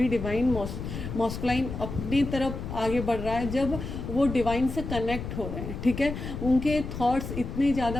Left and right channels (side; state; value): left; noise; rumble, 7 dB below the sound